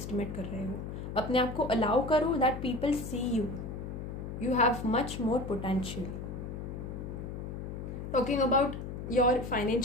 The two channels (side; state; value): left; noise; hum, 7 dB below the sound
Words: कर रहे हो। अपने आप को अलाउ करो that people see you have much more potential. Talking about your